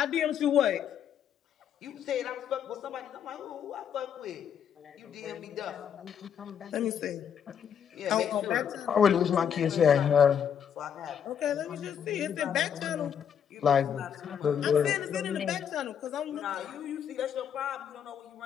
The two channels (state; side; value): quieter; right; 8.3 dB